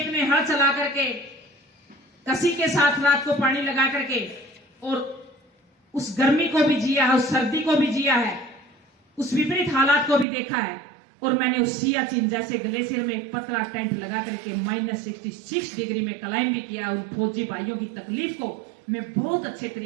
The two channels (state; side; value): drops out; left; at 10.2 s